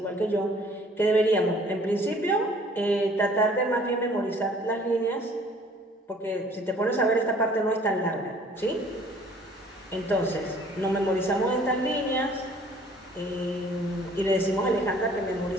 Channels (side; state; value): both; normal; correlation 0.55